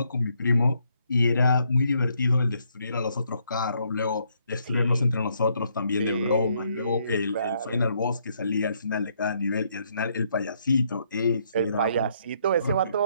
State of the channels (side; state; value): both; inverted; correlation -0.73